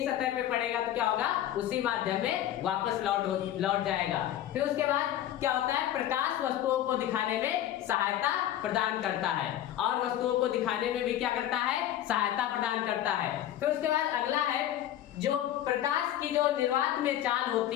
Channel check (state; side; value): quieter; right; 12.1 dB